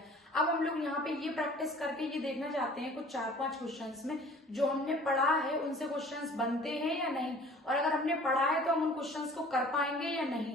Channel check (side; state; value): both; normal; correlation 0.49